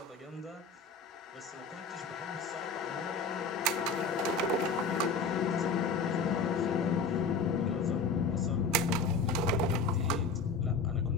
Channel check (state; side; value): quieter; right; 4.2 dB